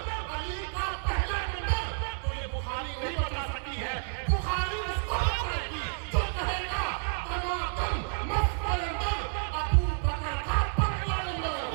अली का पहला नंबर, तो ये बुखारी नहीं बता सकती है। बुखारी उसको बताएगी जो कहेगा टमाटर मस्त कलंदर अबू बकर का पहला नंबर।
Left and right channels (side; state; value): left; silent; 58 dB below the other